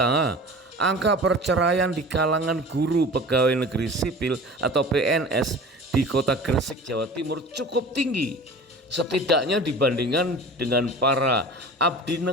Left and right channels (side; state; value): both; normal; correlation 0.39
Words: angka perceraian di kalangan guru pegawai negeri sipil atau PNS di kota Gresik, Jawa Timur cukup tinggi. Setidaknya dibandingkan dengan para abdi